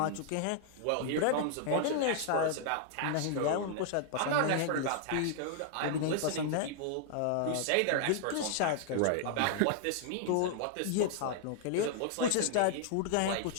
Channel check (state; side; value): different; both; correlation -0.01